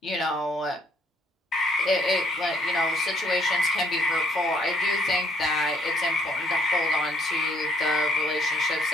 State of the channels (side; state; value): both; normal; correlation 0.66